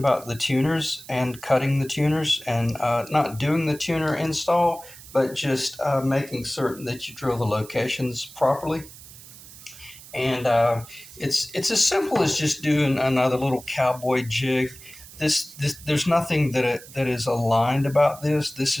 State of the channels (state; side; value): noise; right; hiss, 18 dB below the sound